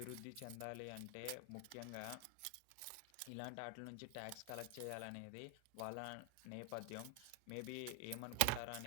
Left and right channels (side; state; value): both; different; correlation 0.00